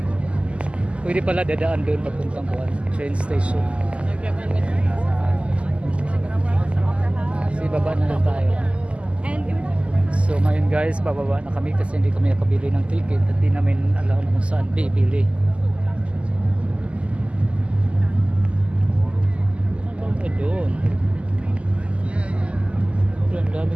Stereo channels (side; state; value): left; late; 0.056 ms